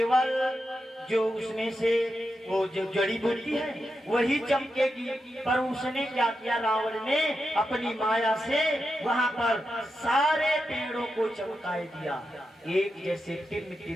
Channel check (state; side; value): normal; both; correlation 0.88